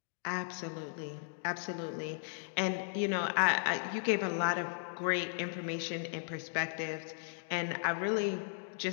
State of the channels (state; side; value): silent; right; digital silence